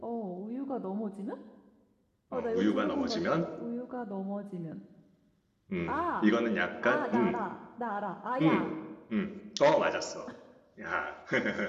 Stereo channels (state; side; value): identical; both; correlation 1.00